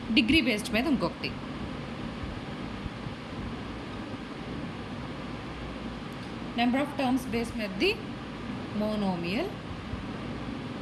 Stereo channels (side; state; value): both; identical; correlation 1.00